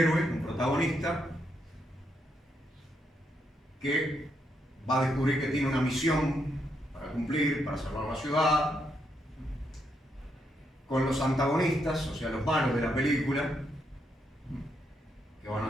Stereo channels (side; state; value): both; normal; correlation 0.79